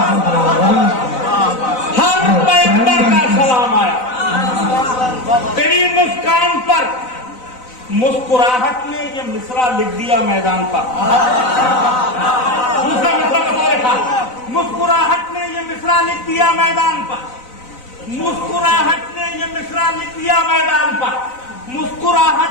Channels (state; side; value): late; right; 4.0 ms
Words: हर पैगंबर का सलाम आया तेरी मुस्कान पर। मुस्कुराहट ने ये मिसरा लिख दिया मैदान पर। दूसरा मिसरा कब लिखा? मुस्कुराहट ने ये मिसरा लिख दिया मैदान पर। मुस्कुराहट ने ये मिसरा लिख दिया मैदान पर।